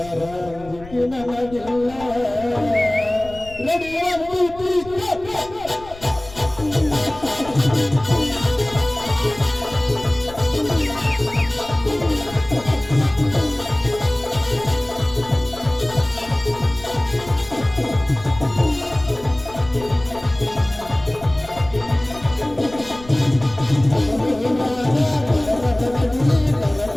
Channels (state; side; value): noise; left; rumble, 18 dB below the sound